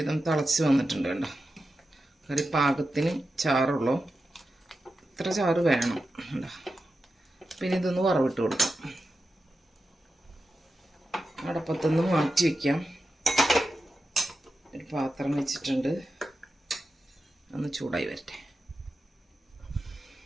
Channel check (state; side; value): normal; both; correlation 0.91